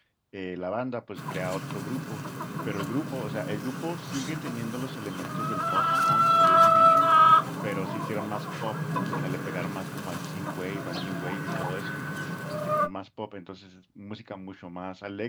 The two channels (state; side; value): identical; both; correlation 1.00